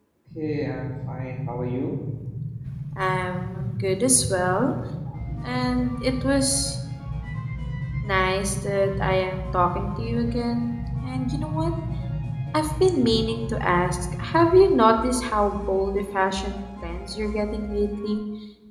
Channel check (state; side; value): identical; both; correlation 1.00